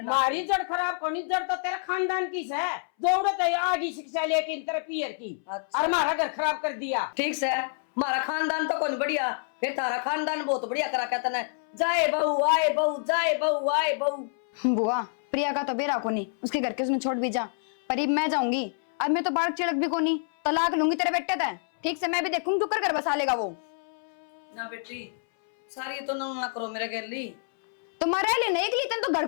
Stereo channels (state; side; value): silent; right; 60 dB below the other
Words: ना। मारी जड़ खराब कोनी जड़ तो तेरा खानदान की है, जरूरत है आगे शिक्षा लेके इन तरह पियर की, अच्छा। और हमारा घर खराब कर दिया। ठीक से हमारा खानदान तो कौन बढ़िया, फिर तारा खानदान बहुत बढ़िया करा कहता ना, जाए बहू आए बहू जाए बहू आए बहू। बुआ प्रिया का तो बेरा को नहीं, उसके घर के उसने छोड़ भी जा, पर अब मैं जाऊंगी, अब मैं तो बाढ़ चिड़क भी को नहीं, तलाक लूंगी तेरे बेटे तय, ठीक से मैं भी देखूंगी तू कर घर बसा लेगा वो। ना बेटी सारी तो ना करो मेरे गली। तो मरा ले नहीं के लिए तेन